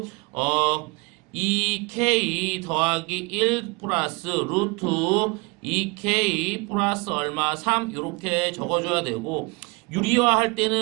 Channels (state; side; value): quieter; left; 27.5 dB